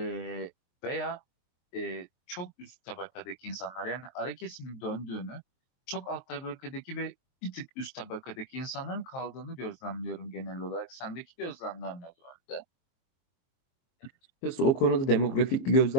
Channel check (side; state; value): right; late; 23 ms